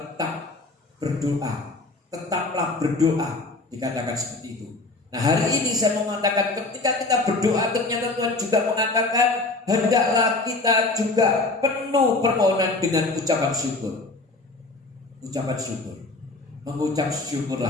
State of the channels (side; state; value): right; quieter; 3.2 dB